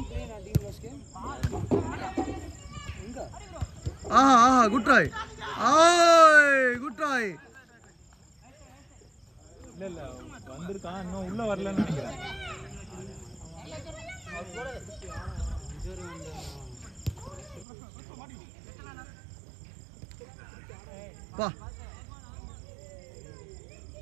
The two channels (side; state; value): left; drops out; at 17.7 s